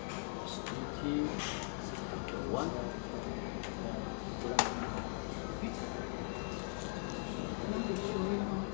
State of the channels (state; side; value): silent; right; 51 dB below the other